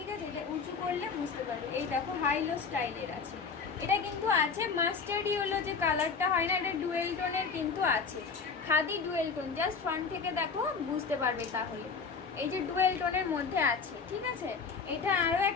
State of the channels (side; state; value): right; quieter; 5.2 dB